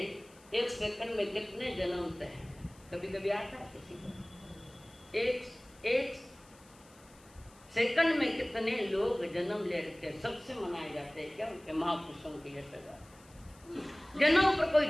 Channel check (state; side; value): noise; left; hiss, 26 dB below the sound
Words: एक सेकंड में कितने जन्मते हैं, कभी कभी आता है किसी को। एक सेकंड में कितने लोग जन्म ले रखे, सबसे मनाए जाते हैं क्या उनके महापुरुषों की यशोगाथा। जन्म पर कोई